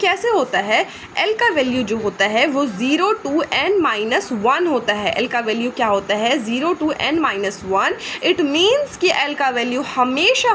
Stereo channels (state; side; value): identical; both; correlation 1.00